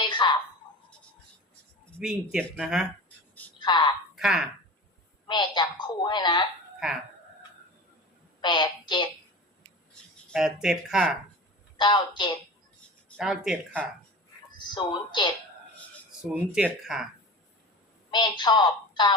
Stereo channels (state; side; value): normal; both; correlation 0.34